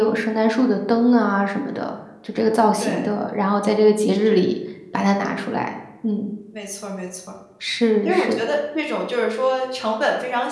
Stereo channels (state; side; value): identical; both; correlation 1.00